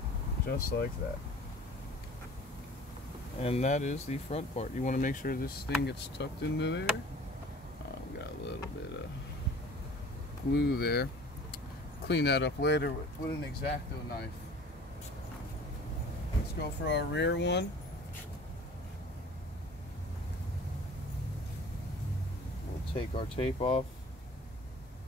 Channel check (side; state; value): both; normal; correlation 0.46